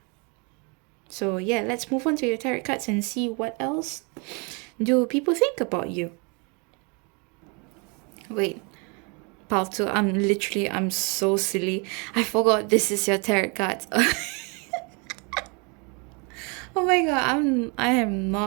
So yeah, let's move on to your tarot cards and see what else do people think about you. Wait, Palto, I'm so silly. I forgot this is your tarot cards. Oh my god, I am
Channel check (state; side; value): quieter; left; 32.6 dB